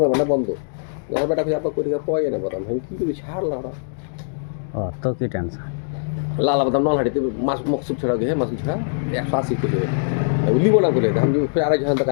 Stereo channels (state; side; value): silent; right; digital silence